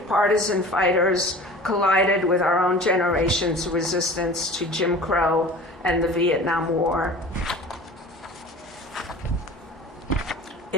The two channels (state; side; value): normal; both; correlation 0.41